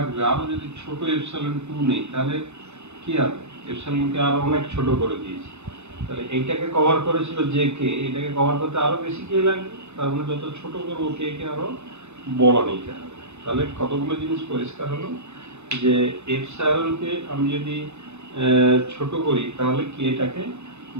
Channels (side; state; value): left; late; 0.82 ms